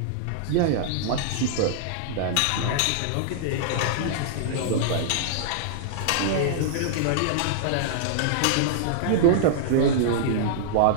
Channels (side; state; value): both; different; correlation -0.01